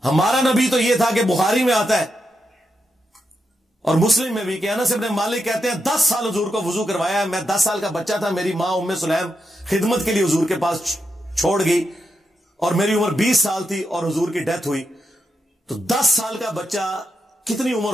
ہمارا نبی تو یہ تھا کہ بخاری میں آتا ہے اور مسلم میں بھی کہ انس ابن مالک کہتے ہیں 10 سال حضور کو وضو کروایا ہے. میں 10 سال کا بچہ تھا، میری ماں ام سلیم خدمت کے لیے حضور کے پاس چھوڑ گئی اور میری عمر 20 سال تھی اور حضور کی ڈیتھ ہوئی. تو 10 سال کا بچہ کتنی عمر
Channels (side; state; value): both; normal; correlation 0.85